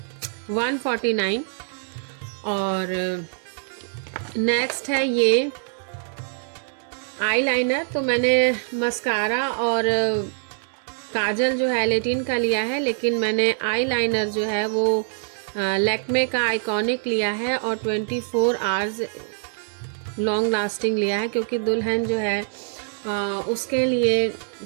149। और नेक्स्ट है ये आईलाइनर, तो मैंने मस्कारा और काजल जो है L18 का लिया है, लेकिन मैंने आईलाइनर जो है वो लैक्मे का आइकॉनिक लिया है, और 24 आवर्स लॉन्ग लास्टिंग लिया है, क्योंकि दुल्हन जो है उसके लिए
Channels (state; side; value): silent; left; 62 dB below the other